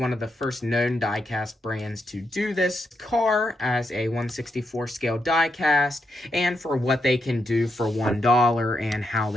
of the first known diecast brands to do this car as a 1/64 scale diecast, and for what they can do for $1 and how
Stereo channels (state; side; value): normal; both; correlation 0.83